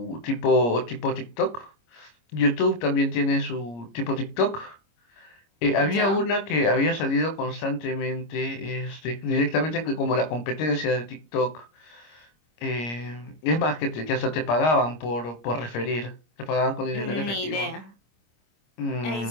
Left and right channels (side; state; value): right; late; 25 ms